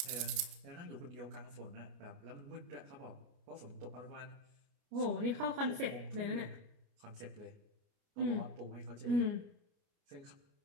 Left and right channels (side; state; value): left; late; 30 ms